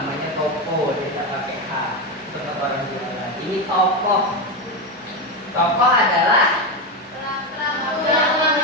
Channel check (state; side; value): normal; both; correlation 0.13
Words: toko, dia tidak pakai H. Untuk orang jualan. Ini tokoh. Tokoh adalah Dalam